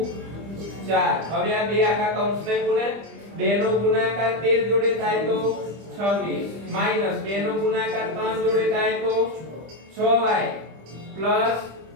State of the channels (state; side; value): late; left; 25 ms